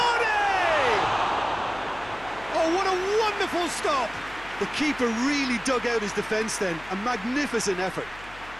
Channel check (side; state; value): left; noise; hum, 20 dB below the sound